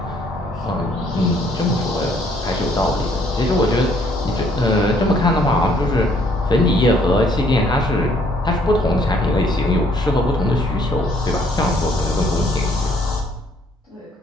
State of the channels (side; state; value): both; normal; correlation 0.64